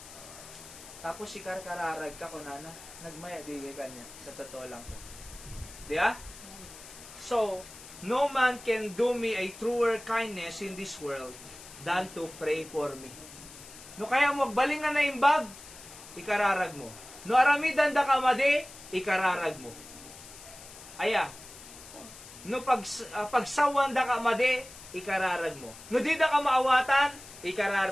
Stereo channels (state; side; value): noise; left; hiss, 17 dB below the sound